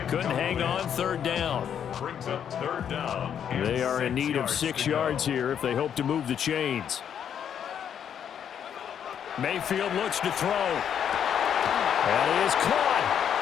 Couldn't hang on third down. Brings up third down. They are in need of 6 yards here if they hope to move the chains. Mayfield looks to throw. And he is caught.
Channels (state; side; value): quieter; right; 8.7 dB